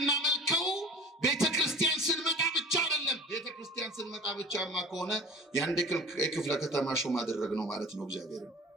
ቤተክርስቲያን ስንመጣ ብቻ አይደለም። ቤተክርስቲያን ስንመጣ ብቻማ ከሆነ የአንድ ክፍለ ከተማ ሹም አደረግነው ማለት ነው።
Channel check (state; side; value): normal; both; correlation 0.42